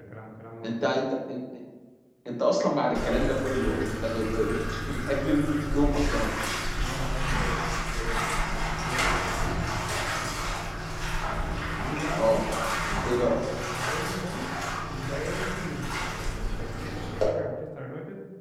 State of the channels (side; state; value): both; identical; correlation 1.00